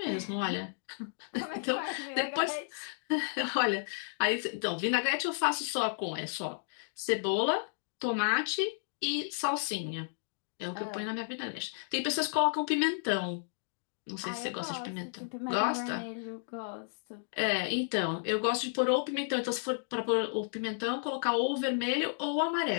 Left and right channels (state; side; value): silent; right; digital silence